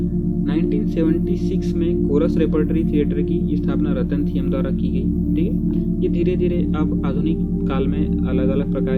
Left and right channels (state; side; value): identical; both; correlation 1.00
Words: 1976 में कोरस रेपर्टरी थिएटर की स्थापना रतन थियम द्वारा की गई। ठीक है, ये धीरे धीरे अब आधुनिक काल में अलग अलग